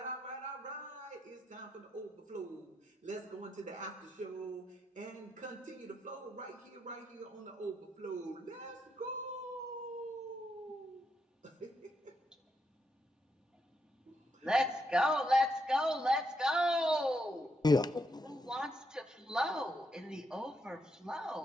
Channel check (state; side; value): normal; both; correlation 0.80